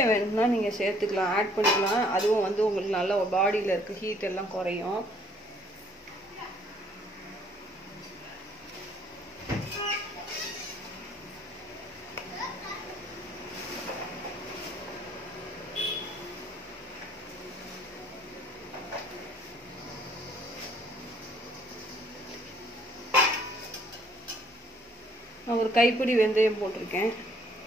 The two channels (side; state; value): both; normal; correlation 0.62